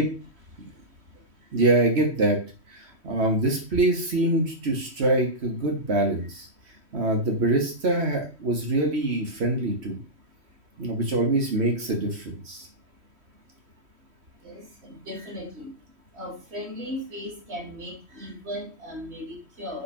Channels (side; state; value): left; late; 3.1 ms